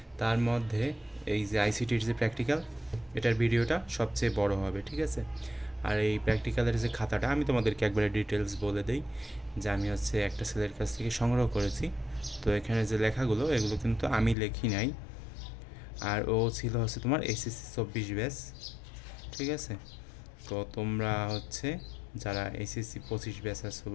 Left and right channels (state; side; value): drops out; right; at 14.4 s